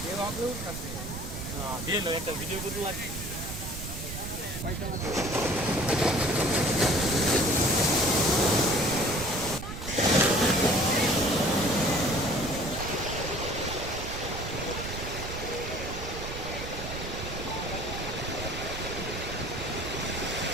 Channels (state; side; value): noise; right; rumble, 8 dB below the sound